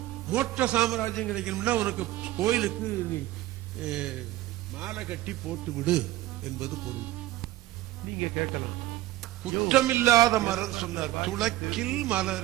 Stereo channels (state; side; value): quieter; left; 16.1 dB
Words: மோட்ச சாம்ராஜ்யம் கிடைக்கணும்னா உனக்கு கோயிலுக்கு நீ மாலை கட்டி போட்டு விடு என்பது பொருள். நீங்க கேட்கலாம், குற்றமில்லாத மலர் சொன்னார். துளக்கில்